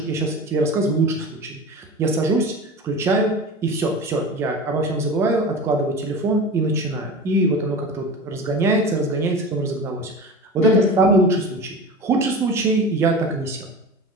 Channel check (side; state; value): both; normal; correlation 0.31